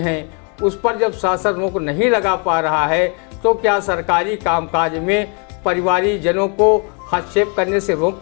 उस पर जब शासन रोक नहीं लगा पा रहा है तो क्या सरकारी कामकाज में परिवारीजनों को हस्तक्षेप करने से रोक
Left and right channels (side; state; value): right; quieter; 36.8 dB